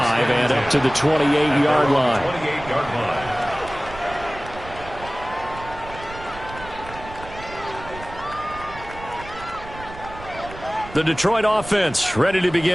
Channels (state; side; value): noise; right; rumble, 15 dB below the sound